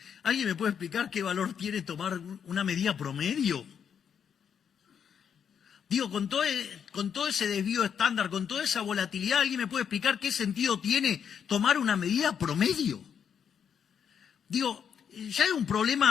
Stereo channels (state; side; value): quieter; right; 7.7 dB